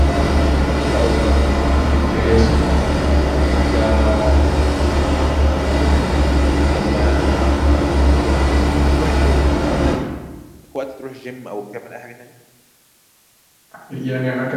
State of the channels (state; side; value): identical; both; correlation 1.00